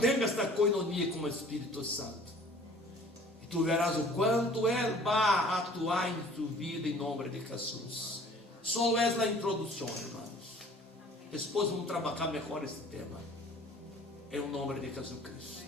esta coinonia com o Espírito Santo, e tu verás o quanto ele vai atuar em tua vida em nome de Jesus. Só é a introdução, irmãos. Depois vamos trabalhar melhor esse tema. Em nome de Jesus Cristo.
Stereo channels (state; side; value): normal; both; correlation 0.50